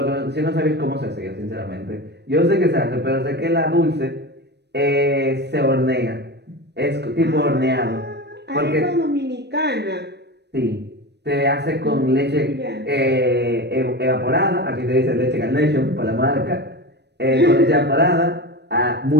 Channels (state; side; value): late; left; 0.49 ms